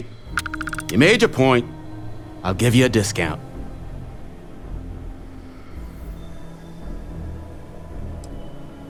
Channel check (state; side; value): identical; both; correlation 1.00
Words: made your point. I'll give you a discount.